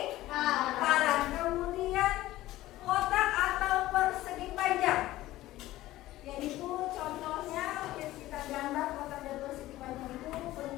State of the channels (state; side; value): quieter; right; 16.1 dB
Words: Kemudian kotak atau persegi panjang, yaitu contohnya kita gambar kotak dan persegi panjang itu